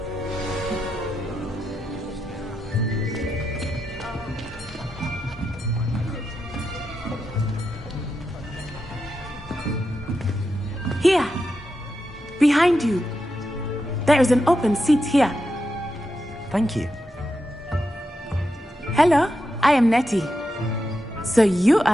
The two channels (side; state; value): both; normal; correlation 0.87